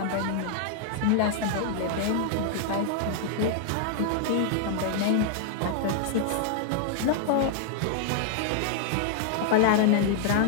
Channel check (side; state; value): both; different; correlation -0.01